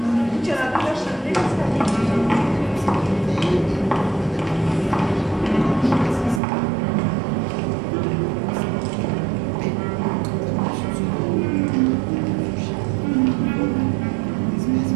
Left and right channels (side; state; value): left; drops out; at 6.4 s